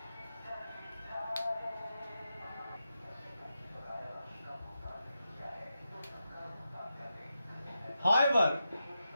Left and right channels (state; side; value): inverted; both; correlation -0.88